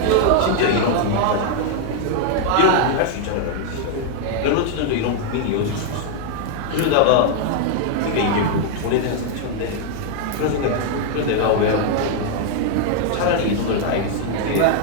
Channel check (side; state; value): both; different; correlation 0.00